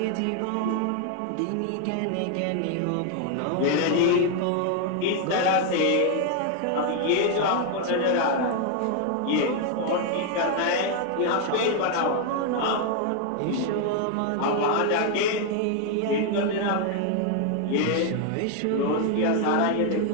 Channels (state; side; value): different; both; correlation 0.01